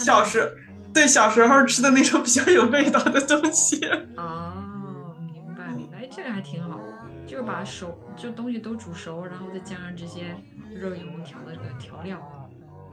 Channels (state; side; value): identical; both; correlation 1.00